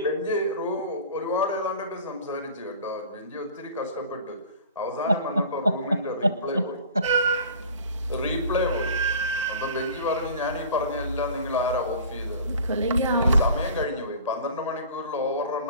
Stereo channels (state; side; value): inverted; both; correlation -0.43